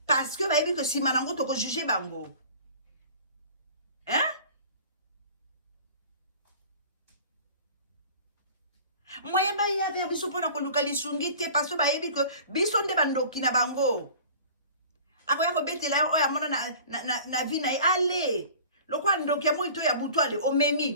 Parce que ba yebi que si manango to ko juger bango. Hein? Moyen ba ya vers biso pona ko luka lisungi te parce que ba yebi que biso nde bandoki na bango. Akoya ko betela yo ya mona na vie na ale. Lokwa ndoki mo ito ya butu ale o memi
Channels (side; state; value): both; inverted; correlation -0.43